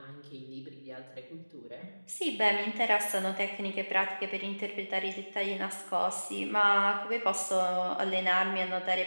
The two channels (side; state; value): both; inverted; correlation -1.00